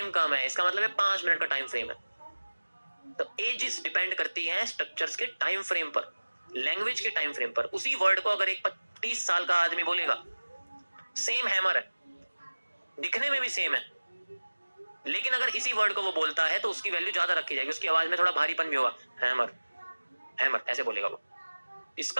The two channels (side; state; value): both; inverted; correlation -1.00